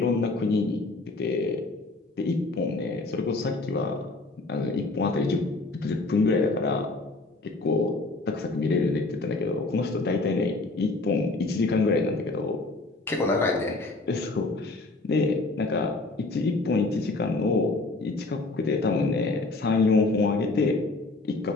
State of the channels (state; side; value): quieter; right; 3.2 dB